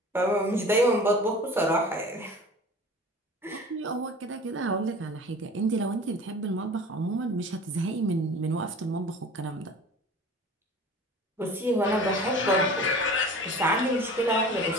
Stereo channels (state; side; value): normal; both; correlation 0.41